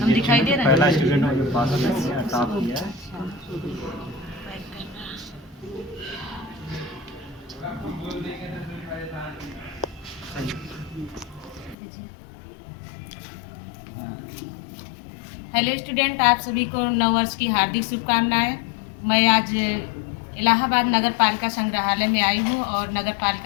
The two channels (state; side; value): drops out; right; at 11.8 s